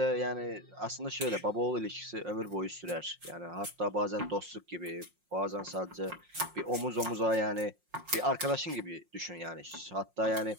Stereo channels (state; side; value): late; left; 5.6 ms